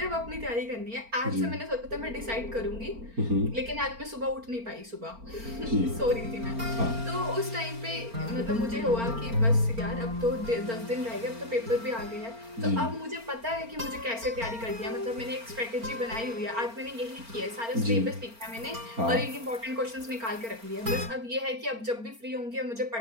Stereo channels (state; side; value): late; left; 4.4 ms